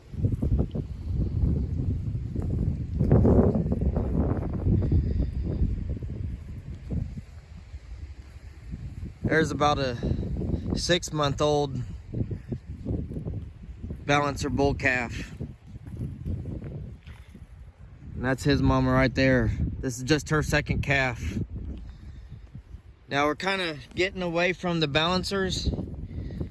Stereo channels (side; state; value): both; identical; correlation 1.00